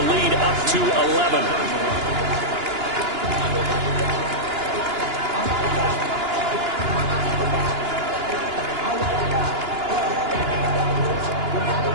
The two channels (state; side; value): late; left; 2.9 ms